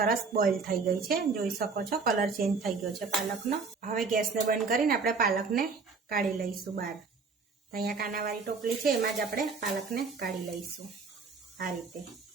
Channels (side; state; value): left; quieter; 4.7 dB